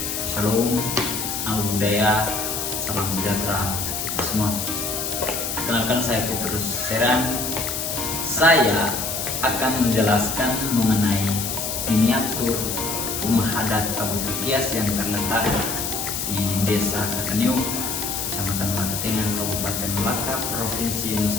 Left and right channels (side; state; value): left; noise; hiss, 3 dB below the sound